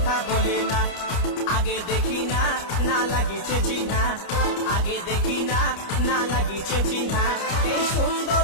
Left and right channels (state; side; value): late; right; 29 ms